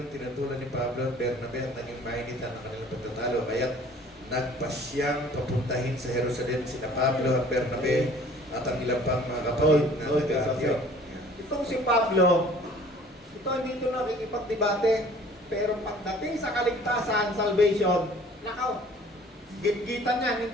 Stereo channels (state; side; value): normal; both; correlation 0.51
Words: tinutulan ni Pablo at Bernabe at naging mainitan ang kanilang pagtatalo. Kaya nagpasyang papuntahin sa Jerusalem sina Pablo at Bernabe at ang ilang pang mga kapatid na taga-Antioch. Itong si Pablo, ito hindi ito nakikipagdebate, pero pagdating sa kaligtasan, salvation, nakaw, gitgitan yan,